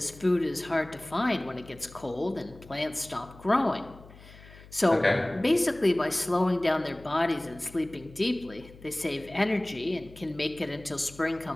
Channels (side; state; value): left; noise; hum, 20 dB below the sound